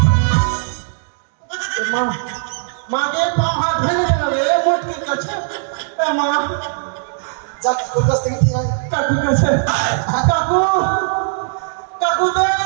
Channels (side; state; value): left; silent; digital silence